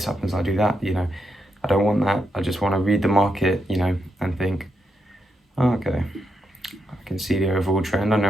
happens, I do that. You know, I don't want that. I just want to read the market, you know, and think, oh, okay, I can see the overall trend. I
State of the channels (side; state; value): both; normal; correlation 0.83